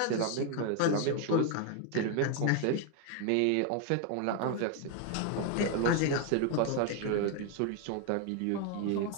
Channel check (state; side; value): different; both; correlation 0.01